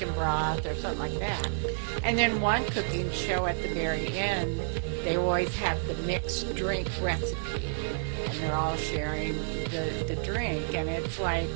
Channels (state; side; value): silent; left; digital silence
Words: broth or something like that. And then one cooking show at the very end, they always have the mixed drink recipe, and they're all sharing the drink. And it's like,